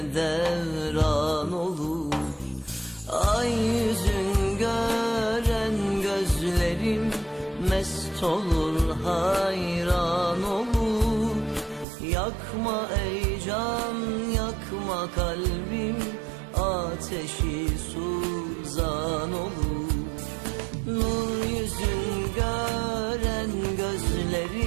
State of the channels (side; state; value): left; drops out; at 11.9 s